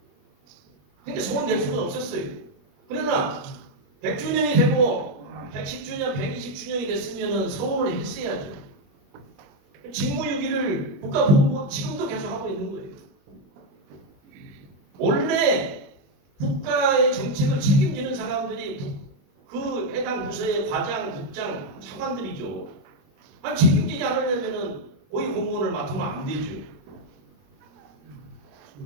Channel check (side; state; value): left; late; 21 ms